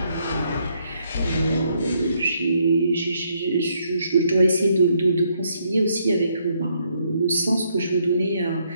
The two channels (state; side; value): inverted; both; correlation -0.73